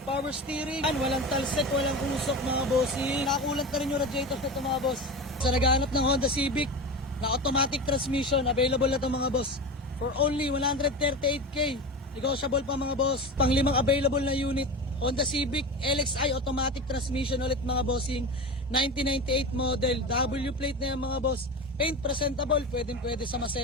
power steering. Walang talsik, walang usok mga bossing. Nakakulant na rin yung radiator nito mga boss. Sa naghahanap ng Honda Civic na automatic transmission, available na ito mga boss. For only 138k. Negotiable pa mga boss. Panglimang available na unit. Honda Civic LXI automatic transmission ulit mga bossing. 1998 model. W plate na yan mga boss. Paint presentable, pwede sa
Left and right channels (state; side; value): normal; both; correlation 0.26